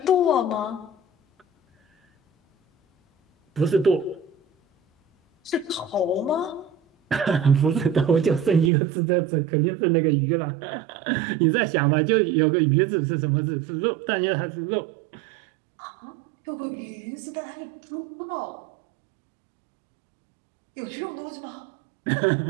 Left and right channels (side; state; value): left; drops out; at 8.7 s